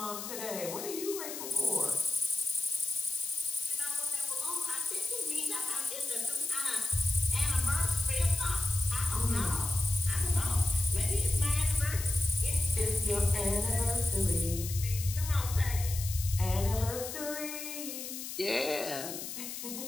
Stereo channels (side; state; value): left; noise; hiss, 7 dB below the sound